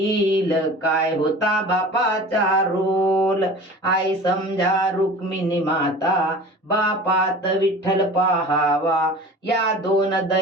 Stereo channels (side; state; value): both; normal; correlation 0.39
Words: काय होता बापाचा रोल. आई समजा रुक्मिणी माता, बापात विठ्ठल पाहावा, या दोन